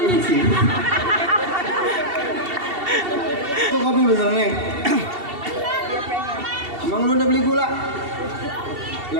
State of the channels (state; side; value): late; left; 2.7 ms